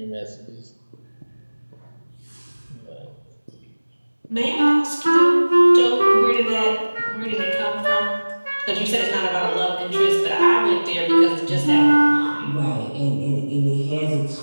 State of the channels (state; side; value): inverted; both; correlation -1.00